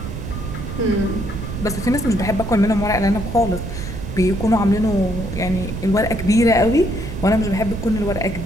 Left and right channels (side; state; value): right; noise; rumble, 7 dB below the sound